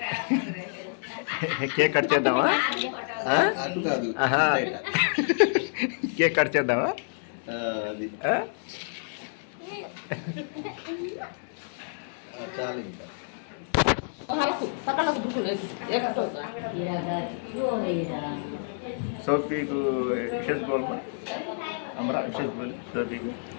కేక్ కట్ చేద్దామా? కేక్ కట్ చేద్దామా? చాలు. సోఫీకు విషెస్ बोल हमारा विशेष बोल सभी को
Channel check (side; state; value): right; silent; digital silence